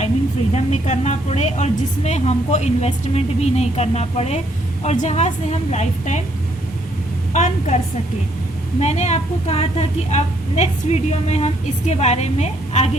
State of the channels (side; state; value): both; normal; correlation 0.70